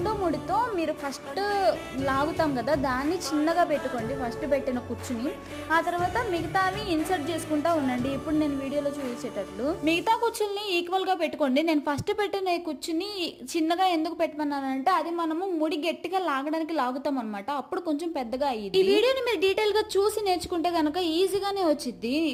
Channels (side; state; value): both; identical; correlation 1.00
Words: ముడితో మీరు ఫస్ట్ లాగుతాం కదా, దాన్ని చిన్నగా పెట్టుకోండి ఫస్ట్ పెట్టిన కుచ్చుని. ఆ తర్వాత మిగతావి ఇన్సర్ట్ చేసుకుంటా ఉండండి. ఇప్పుడు నేను వీడియోలో చూపించేటట్లు మిగతా కుచ్చుల్ని ఈక్వల్ గా పెట్టుకోండి. నేను ఫస్ట్ పెట్టిన కుచ్చుని చిన్నగా ఎందుకు పెట్టమన్నానంటే అది మనము ముడి గట్టిగా లాగడానికి లాగుతాం అనమాట, అప్పుడు కొంచెం పెద్దగా అయ్యింది. ఈ వీడియోని మీరు డీటెయిల్ గా చూసి నేర్చుకుంటే కనుక ఈజీగానే వచ్చింది